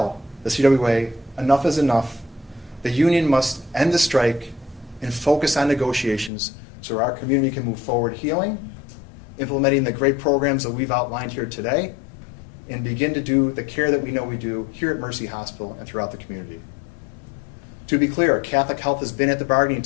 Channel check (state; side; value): drops out; right; at 6.3 s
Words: the CWA enough is enough. The union must end the strike and focus on negotiations so our community can move forward healing, implementing the great programs that we've outlined here today, and begin to do the care that we know we do here at Mercy Hospital and throughout the community. To be clear, Catholic Health has been at the bargaining